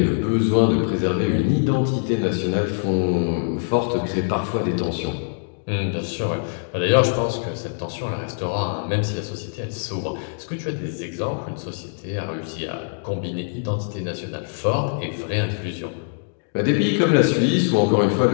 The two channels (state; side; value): silent; right; digital silence